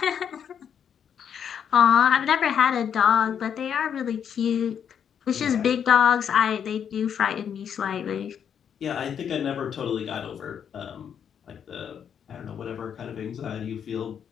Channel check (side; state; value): right; quieter; 8.1 dB